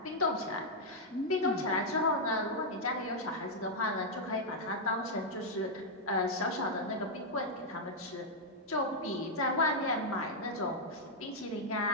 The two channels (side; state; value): both; normal; correlation -0.03